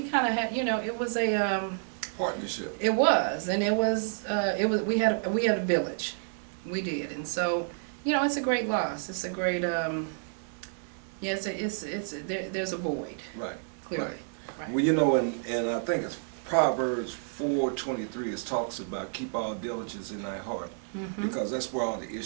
kind of had, it was a partnership. It was, and it was, we had a village. We did. And so, it's a great loss. It's a great, there's a void. Right. Clearly. Right. Well, and I think it's Proverbs 4:23. It talks about keep all diligence in thy heart, because that's where all the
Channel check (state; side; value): silent; left; digital silence